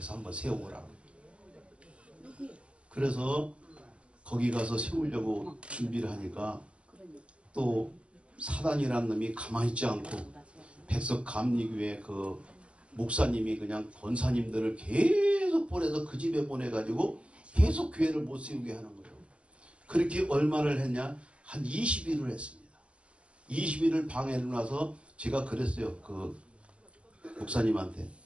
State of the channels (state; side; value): late; left; 0.060 ms